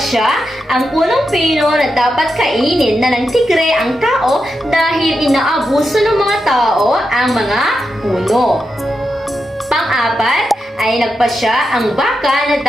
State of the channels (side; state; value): both; normal; correlation 0.87